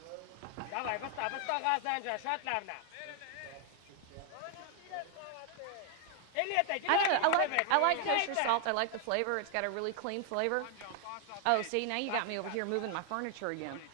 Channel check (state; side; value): different; both; correlation 0.00